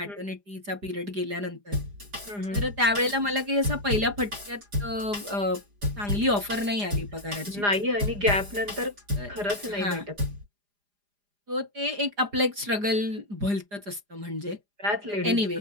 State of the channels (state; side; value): late; left; 4.9 ms